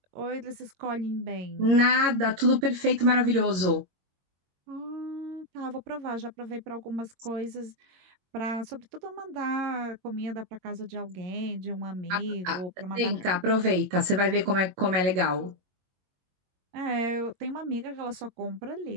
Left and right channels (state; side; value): late; left; 22 ms